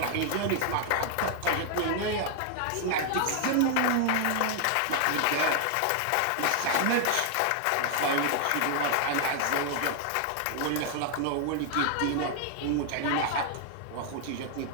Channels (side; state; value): both; different; correlation 0.00